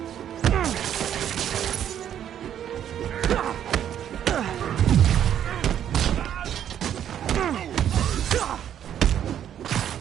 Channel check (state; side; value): quieter; left; 10.0 dB